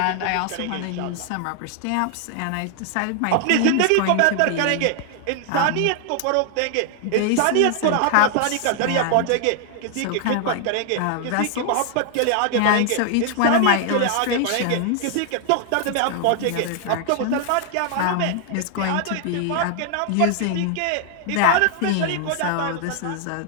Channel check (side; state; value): both; different; correlation 0.00